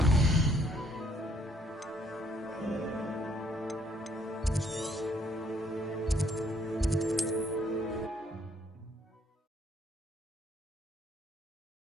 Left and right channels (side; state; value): both; normal; correlation 0.66